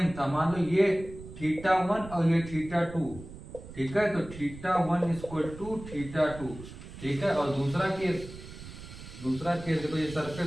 था, मान लो ये θ1 और ये θ2। ठीक है, तो θ1 इक्वल टू θ2। ठीक है, और दूसरा केस देखो, ये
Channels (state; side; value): noise; right; rumble, 14 dB below the sound